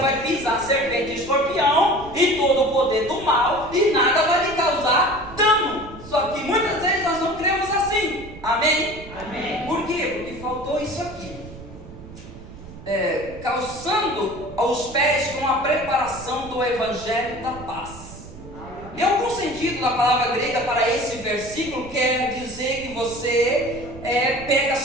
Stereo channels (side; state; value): right; noise; rumble, 16 dB below the sound